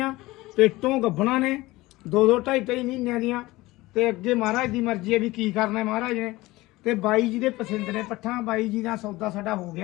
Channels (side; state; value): right; quieter; 19.6 dB